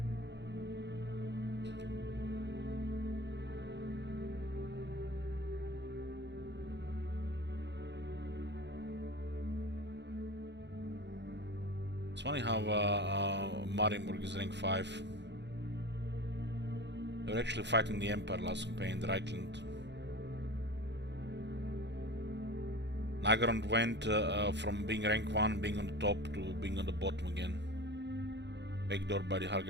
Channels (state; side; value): late; left; 0.51 ms